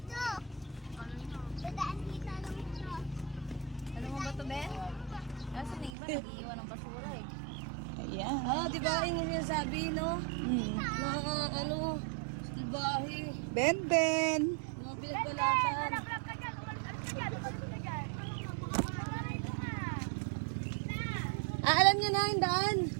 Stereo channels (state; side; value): drops out; left; at 5.9 s